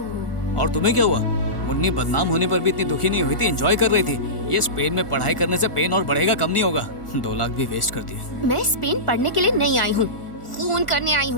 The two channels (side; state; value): right; late; 1.4 ms